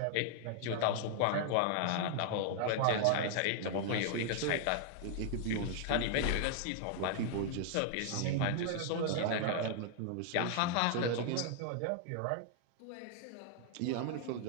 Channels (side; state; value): both; different; correlation 0.00